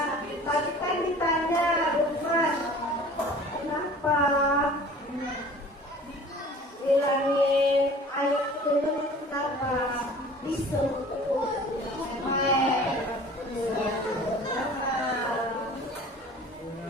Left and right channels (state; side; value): normal; both; correlation 0.45